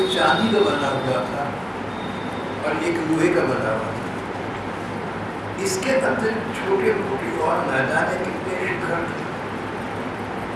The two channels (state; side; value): identical; both; correlation 1.00